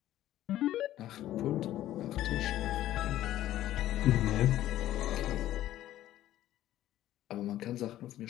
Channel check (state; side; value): quieter; right; 13.5 dB